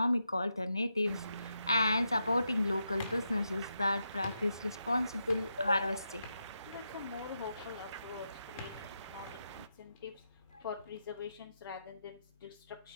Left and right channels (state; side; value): inverted; both; correlation -0.85